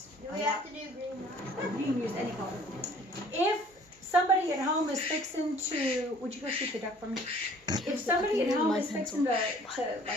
Do we have to do green one? you can use any color. If somebody at home is fixing to, would you go shoot the duck for me? If somebody at home is fixing to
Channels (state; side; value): normal; both; correlation 0.54